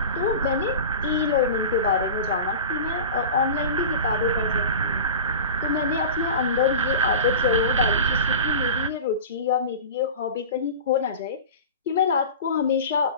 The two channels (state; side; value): inverted; both; correlation -0.32